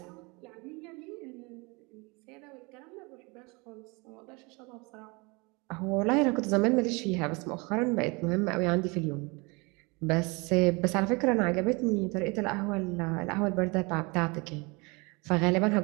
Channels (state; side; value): quieter; left; 27.9 dB